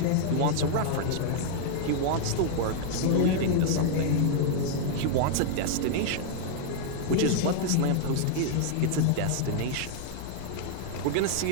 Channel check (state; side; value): different; both; correlation -0.01